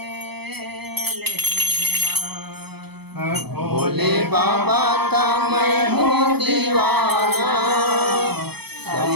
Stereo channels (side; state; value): left; late; 0.98 ms